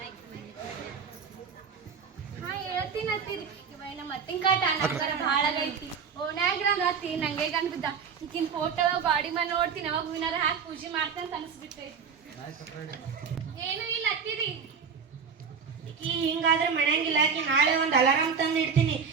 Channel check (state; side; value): quieter; left; 6.3 dB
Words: ಹೇಳ್ತೀನತ್ತೀರಿ ಇವ ಮತ್ತಿನ ಕಾಟ ನಂಗರ ಭಾಳ ಆಗೈತಿ ಓಣ್ಯಾಗಿರಂದತ್ತಿ ನಂಗೆ ಗಂಟದ ಈಕಿನ ಫೋಟೋ ಗಾಡಿ ಮೇಲೆ ನೋಡ್ತೀನಿ ಅವಾಗ ಹೂವಿನಾರ ಹಾಕಿ ಪೂಜೆ ಮಾಡ್ತೇನೆ ಅಂತ ಅನಿಸ್ಬಿಟ್ಟೈತಿ ಏನೂ ಇಲ್ಲ ಹತ್ತೀರಿ ಈಕಿ ಹಿಂಗಾದ್ರೆ ಮಣ್ಯಾಂಗಿಲ್ಲ ಈಕಿ ನಾಳೆ ಒಂದು ಅಲಾರಾಮ್ ತಂದು ಇಡ್ತೀನಿ